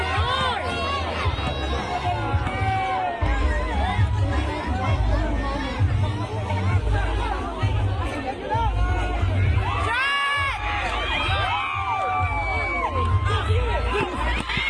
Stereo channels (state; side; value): identical; both; correlation 1.00